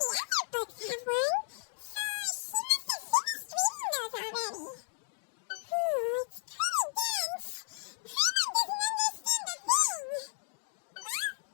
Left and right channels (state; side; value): silent; right; digital silence